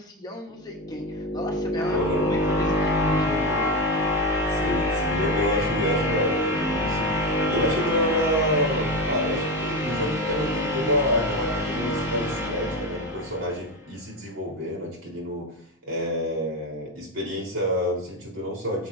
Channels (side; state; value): both; normal; correlation 0.16